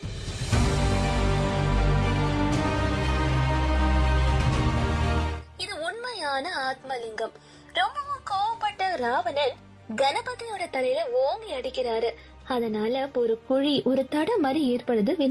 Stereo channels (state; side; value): identical; both; correlation 1.00